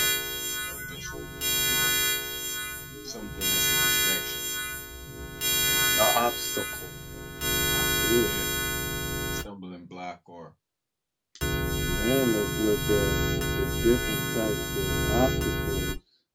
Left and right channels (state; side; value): identical; both; correlation 1.00